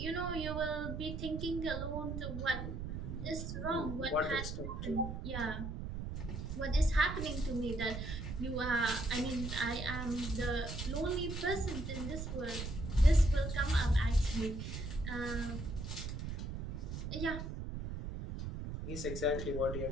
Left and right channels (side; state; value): right; noise; rumble, 5 dB below the sound